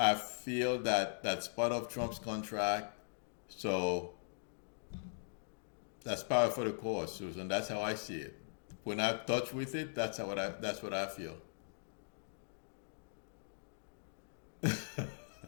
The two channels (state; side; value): silent; right; digital silence